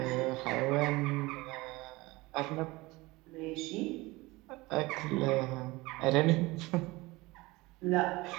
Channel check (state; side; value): quieter; left; 21.6 dB